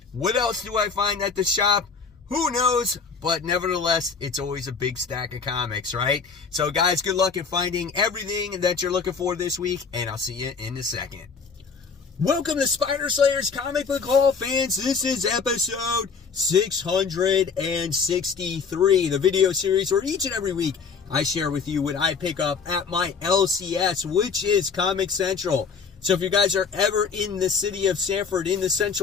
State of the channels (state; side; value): quieter; right; 5.5 dB